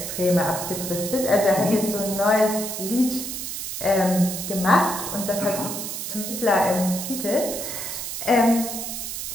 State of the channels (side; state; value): right; noise; hiss, 5 dB below the sound